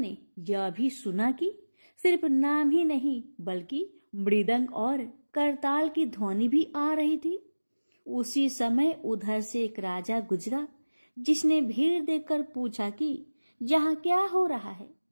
यह भी सुना कि सिर्फ नाम ही नहीं बल्कि मृदंग और करताल की ध्वनि भी आ रही थी। उसी समय उधर से एक राजा गुजरा, जिसने भीड़ देखकर पूछा कि यहाँ क्या हो रहा है।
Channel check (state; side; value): inverted; both; correlation -1.00